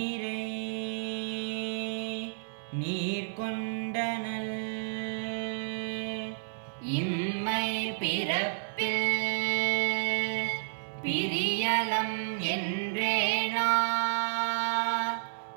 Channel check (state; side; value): silent; left; 57 dB below the other